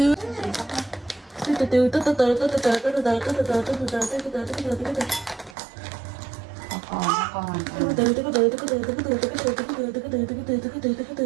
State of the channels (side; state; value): left; drops out; at 5.6 s